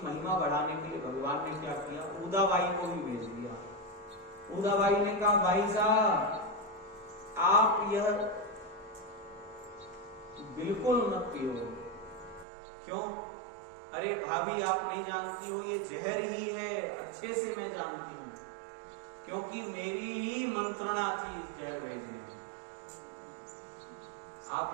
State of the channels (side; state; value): left; drops out; at 12.5 s